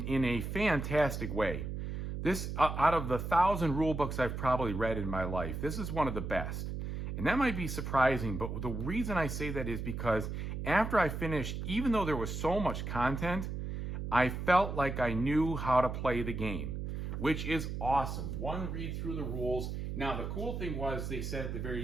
in a fantastic way. This, out of the 1,000 rule books I've probably read in my life, this is one of the best. And that might be surprising, but the reason I say that is because after I finished, even though there was so much content, I felt like I knew how to play the game, which is awesome. One read through the rules. Now, the cool thing was they said at the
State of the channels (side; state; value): right; noise; hum, 4 dB below the sound